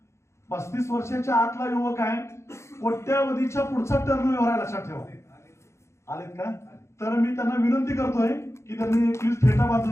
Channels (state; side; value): late; right; 0.13 ms